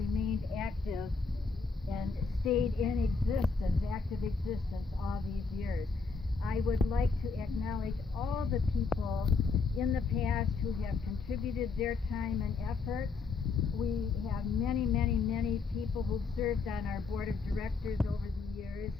active and stayed in existence, active existence all these years. I would like to acknowledge all the people in the past who have contributed their time and effort. We have many, many, many people who've served on our board of directors over the years.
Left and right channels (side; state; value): right; quieter; 4.6 dB